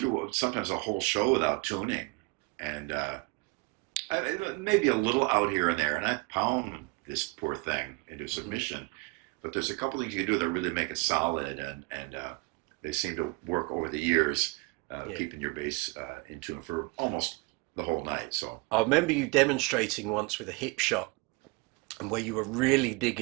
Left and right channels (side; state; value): left; quieter; 27.8 dB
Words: sometimes a whole show without tuning, and maybe a little out here and there, and I pound this poor thing into submission. Mm-hmm. But there's a couple things you can do that really make it solid, and they seem to work over the years, keeping your bass in tune for almost the whole night. So I remember you demonstrating once with a Hipshot, and where you were really